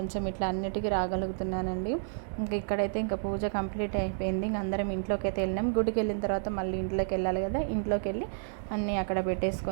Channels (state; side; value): silent; left; digital silence